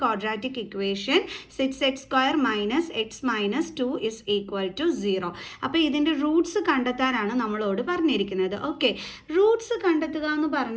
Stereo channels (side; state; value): both; identical; correlation 1.00